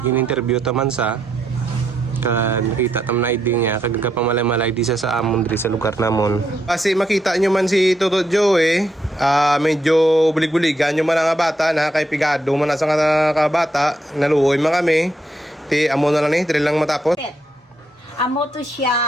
in-interview taman sa nakita tam na ID niya kagaga pamamalay di sa amon diri sa lugar namon. Kasi makita nyo man si Toto Joe medyo bulig-buligan nyo man ang bata na kay pigado man sa nga bata naluoy man kami ti amo na lang ni diri lang matapos. Amo to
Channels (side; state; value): both; normal; correlation 0.78